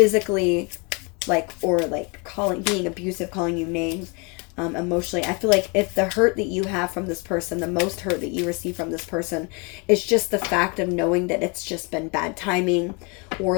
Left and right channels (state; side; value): quieter; right; 31.5 dB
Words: like, or like being abusive, calling you names, emotionally. I feel like if the hurt that you have from this person, the most hurt that you receive from this person, is just the fact of knowing that it's just been bad timing,